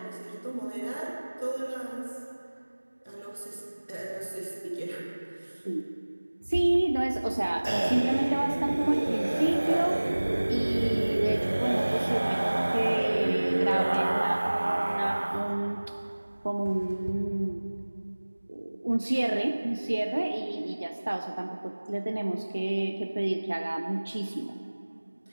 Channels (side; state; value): both; inverted; correlation -1.00